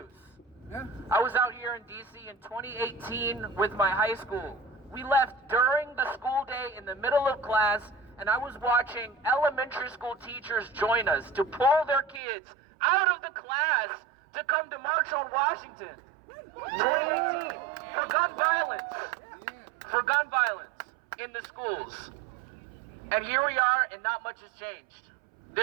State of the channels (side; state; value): left; drops out; at 12.2 s